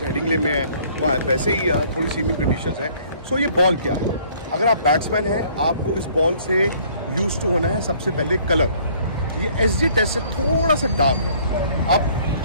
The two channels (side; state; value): both; inverted; correlation -0.58